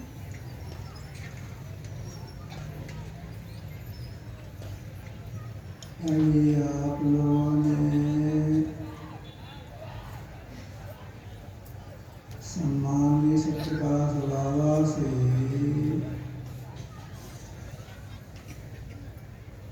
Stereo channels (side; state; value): both; identical; correlation 1.00